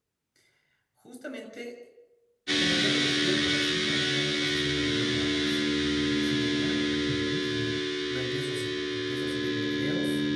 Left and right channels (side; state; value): both; identical; correlation 1.00